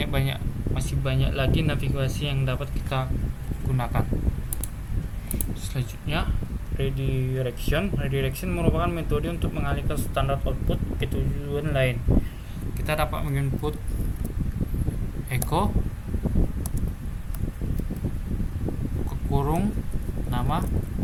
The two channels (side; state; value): both; identical; correlation 1.00